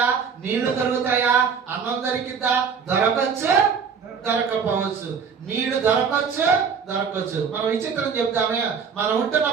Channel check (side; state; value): left; quieter; 6.2 dB